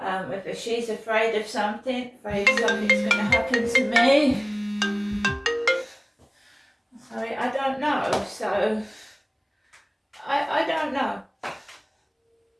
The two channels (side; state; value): both; identical; correlation 1.00